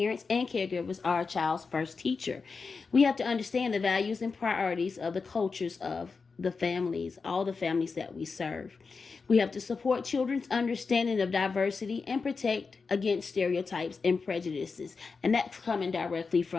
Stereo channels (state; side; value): quieter; right; 4.8 dB